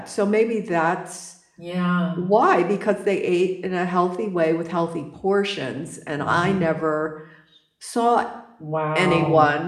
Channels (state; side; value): identical; both; correlation 1.00